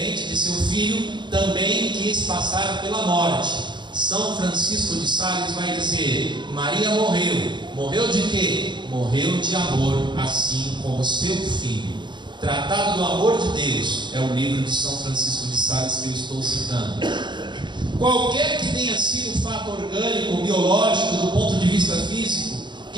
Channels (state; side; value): late; left; 0.22 ms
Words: de seu filho, também quis passar pela morte. São Francisco de Sales vai dizer: Maria morreu de quê? Morreu de amor, assim como seu filho. Tratado do Amor de Deus é o livro de São Francisco de Sales que eu estou citando. Qualquer que tenha sido o fato orgânico, biológico, do ponto de vista físico,